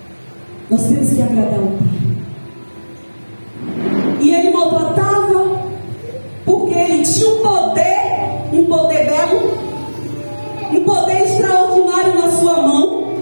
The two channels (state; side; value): inverted; both; correlation -1.00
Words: Nós temos que agradar o Pai. E ele maltratava porque ele tinha um poder belo, um poder extraordinário na sua mão.